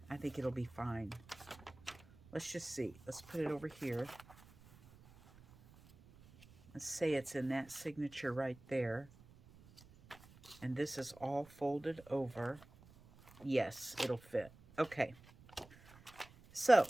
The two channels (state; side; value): noise; right; rumble, 23 dB below the sound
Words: I think it'll be fine. Let's just see. Let's put it over here. Let's say it's in that signature right there. And this is all folded over. Yes, it'll fit. Okay. So,